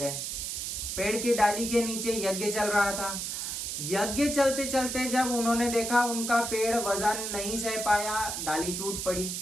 पेड़ की डाली के नीचे यज्ञ चल रहा था। यज्ञ चलते चलते जब उन्होंने देखा उनका पेड़ वजन नहीं सह पाया, डाली टूट पड़ी,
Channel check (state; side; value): noise; right; hiss, 4 dB below the sound